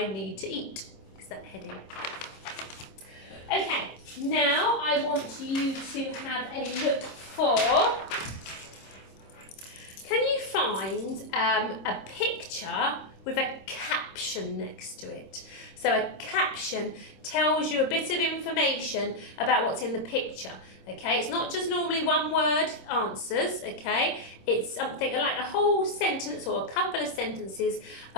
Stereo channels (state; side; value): late; right; 26 ms